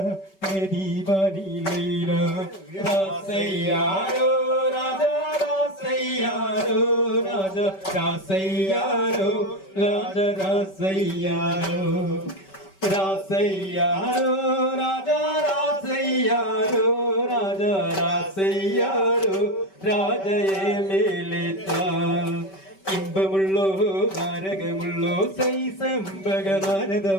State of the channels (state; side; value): late; right; 5.2 ms